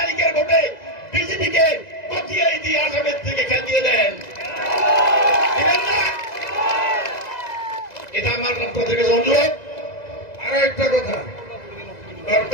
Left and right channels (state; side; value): late; right; 2.0 ms